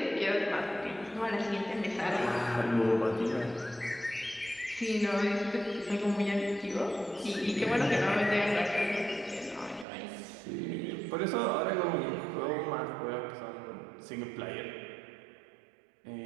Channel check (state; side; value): drops out; left; at 9.9 s